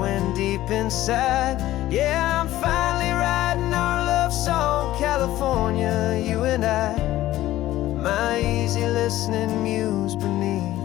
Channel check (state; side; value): quieter; right; 15.0 dB